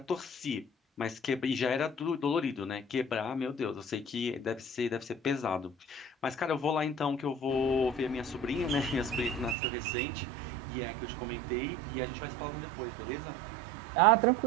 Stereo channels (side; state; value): left; drops out; at 9.6 s